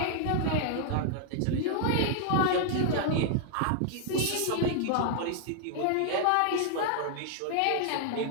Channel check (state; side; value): different; both; correlation -0.01